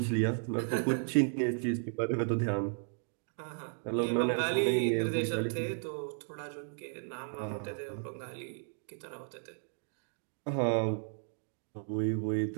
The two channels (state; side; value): silent; left; 55 dB below the other